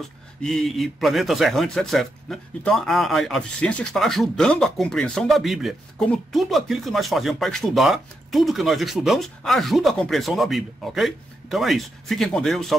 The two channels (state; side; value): normal; both; correlation 0.83